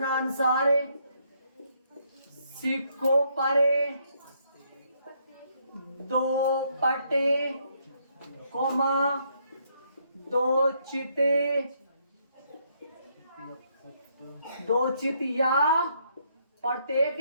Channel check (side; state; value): both; inverted; correlation -0.72